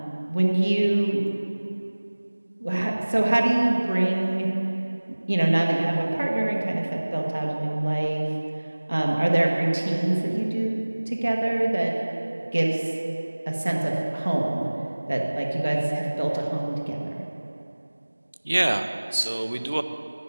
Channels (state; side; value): inverted; both; correlation -1.00